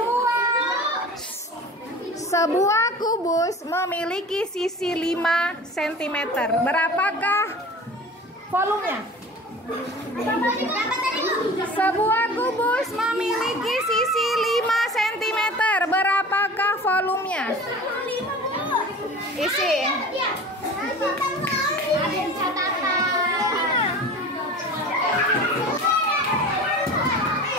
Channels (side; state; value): both; normal; correlation 0.39